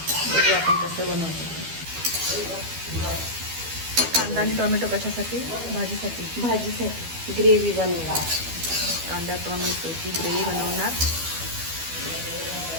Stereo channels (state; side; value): late; left; 12 ms